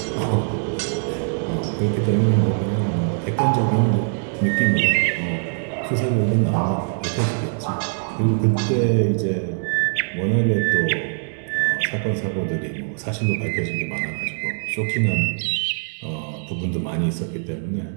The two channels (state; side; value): silent; left; digital silence